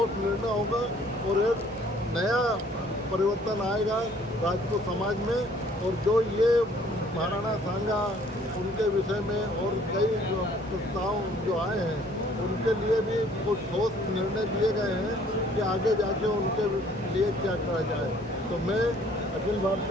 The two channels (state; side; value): normal; both; correlation 0.58